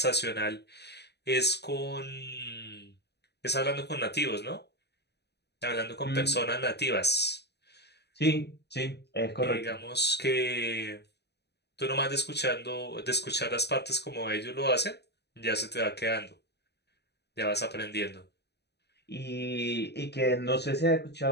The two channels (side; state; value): right; late; 0.49 ms